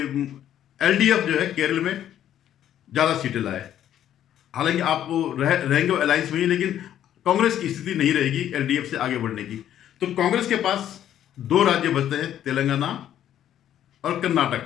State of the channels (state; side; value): quieter; right; 11.0 dB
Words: एलडीएफ जो है केरल में ज्यादा सीटें लाए। हालांकि आप वो रहेंगे अलायंस में ही, लेकिन कांग्रेस की स्थिति नहीं रहेगी एलडीएफ से आगे बढ़ने की। तो कांग्रेस के पास 2 राज्य बचते हैं, तेलंगाना और